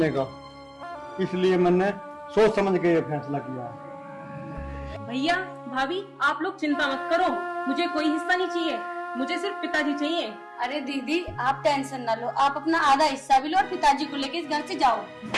का। इसलिए मैंने सोच समझ के ये फैसला किया है। भैया भाभी आप लोग चिंता मत करो, मुझे कोई हिस्सा नहीं चाहिए, मुझे सिर्फ पिताजी चाहिए। अरे दीदी आप टेंशन ना लो, आप अपना आधा हिस्सा भी लो और पिताजी को लेके इस घर से जाओ।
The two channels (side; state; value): both; identical; correlation 1.00